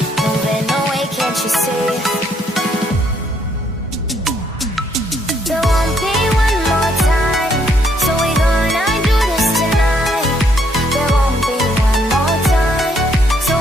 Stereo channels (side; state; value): both; normal; correlation 0.70